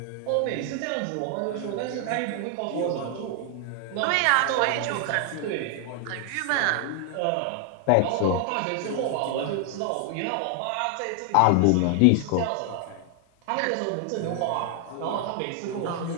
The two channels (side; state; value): both; different; correlation 0.00